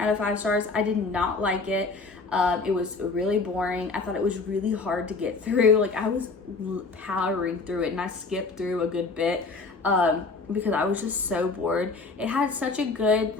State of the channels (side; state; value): right; quieter; 4.0 dB